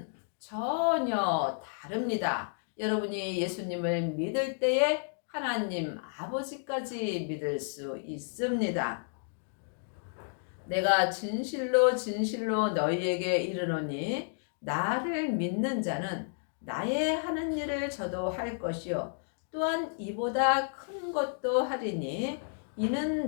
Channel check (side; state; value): right; silent; digital silence